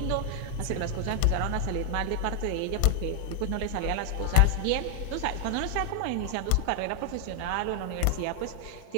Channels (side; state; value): both; different; correlation 0.00